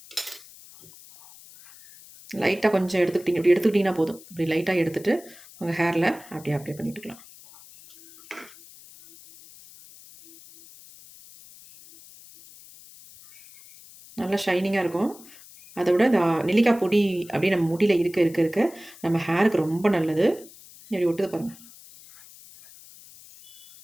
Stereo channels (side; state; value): left; noise; hiss, 21 dB below the sound